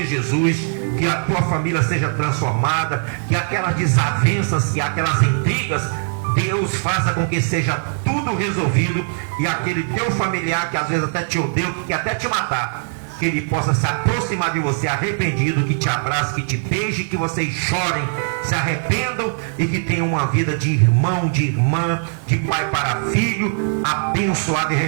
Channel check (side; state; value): left; silent; digital silence